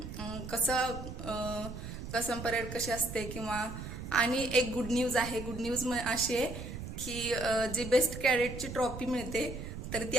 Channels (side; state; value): right; noise; rumble, 8 dB below the sound